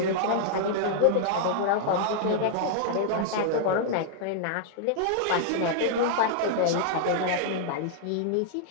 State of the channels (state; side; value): different; both; correlation -0.01